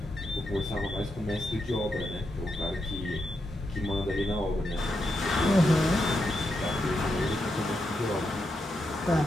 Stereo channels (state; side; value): normal; both; correlation 0.84